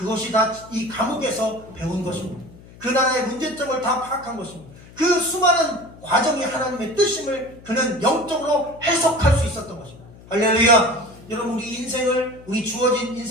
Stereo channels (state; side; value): noise; left; hum, 21 dB below the sound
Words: 다 이 감옥에서 배운 것입니다. 그 나라의 문제점을 다 파악한 것입니다. 그 수많은 과정이 하나님의 뜻임을 그는 영적으로 해석할 수 있었던 것입니다. 할렐루야. 여러분, 우리 인생을, 우리 주어진